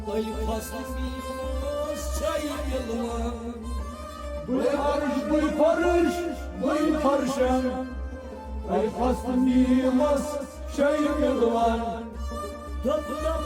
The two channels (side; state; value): both; identical; correlation 1.00